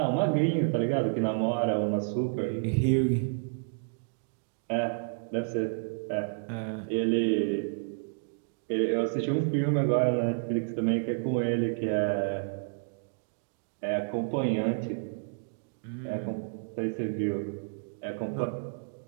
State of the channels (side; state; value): left; silent; digital silence